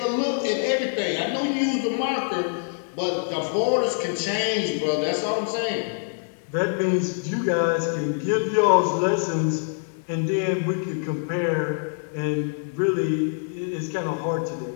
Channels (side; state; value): right; silent; 62 dB below the other